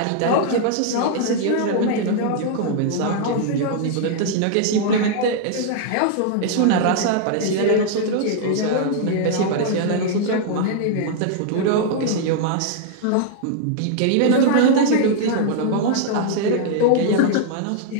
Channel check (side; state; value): both; different; correlation -0.01